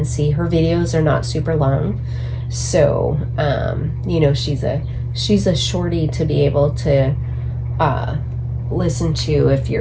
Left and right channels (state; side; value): identical; both; correlation 1.00